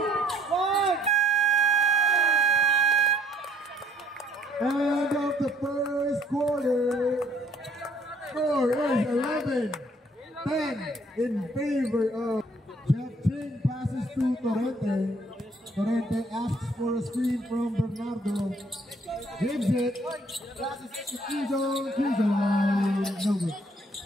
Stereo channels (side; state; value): both; normal; correlation 0.62